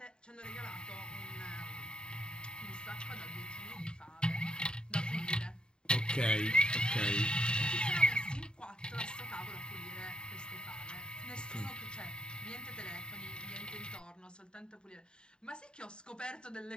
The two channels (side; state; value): right; late; 0.049 ms